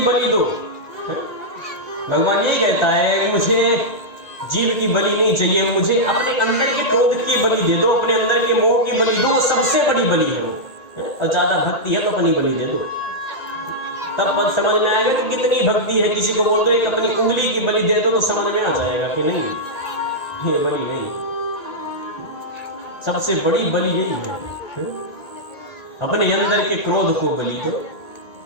बलि दो। भगवान ये कहता है मुझे जीव की बलि नहीं चाहिए, मुझे अपने अंदर के क्रोध की बलि दे दो, अपने अंदर के मोह की बलि दो, सबसे बड़ी बलि है वो। और ज्यादा भक्ति है तो अपनी बलि दे दो, तब मत समझ में आएगा कि कितनी भक्ति है। किसी को बोल दो एक अपनी उंगली की बलि दे दो तो समझ में आ जाएगा कि नहीं, ये बलि नहीं। सबसे बड़ी बलि यही है, अपने अंदर के क्रोध को बलि दो,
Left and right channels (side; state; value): right; late; 1.8 ms